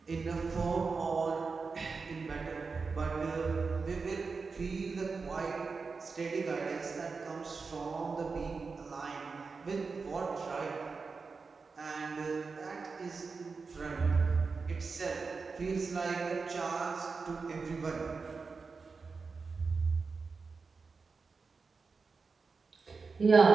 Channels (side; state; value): left; quieter; 4.6 dB